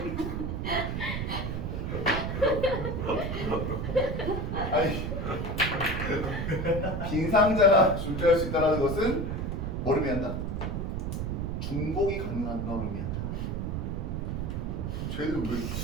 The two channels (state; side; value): noise; right; rumble, 2 dB below the sound